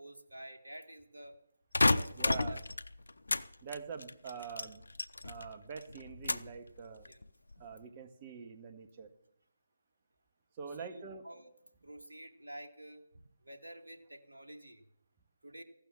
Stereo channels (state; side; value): inverted; both; correlation -0.94